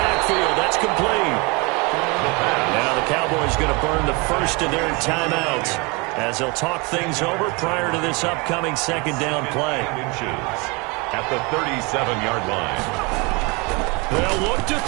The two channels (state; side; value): quieter; left; 28.4 dB